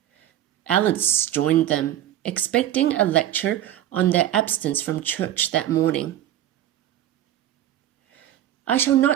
Alice joined them, expecting a lecture on their absence from church that morning. "I shall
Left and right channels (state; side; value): quieter; left; 12.2 dB